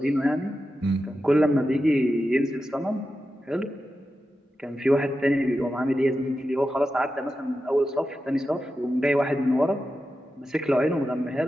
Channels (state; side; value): normal; both; correlation 0.90